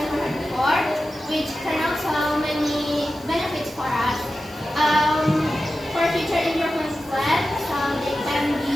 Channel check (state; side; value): noise; left; hiss, 24 dB below the sound